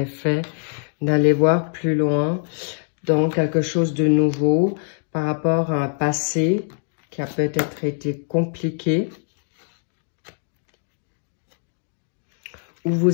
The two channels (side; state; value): right; silent; digital silence